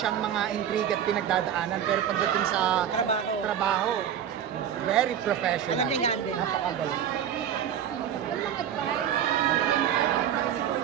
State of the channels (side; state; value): left; quieter; 9.5 dB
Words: mga intrigue at pinagdadaanan, pero pagdating sa trabaho, very professional. Alam niya yung handle. Napakagaling.